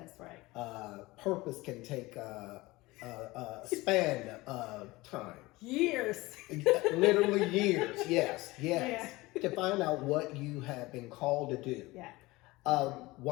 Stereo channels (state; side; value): quieter; right; 20.8 dB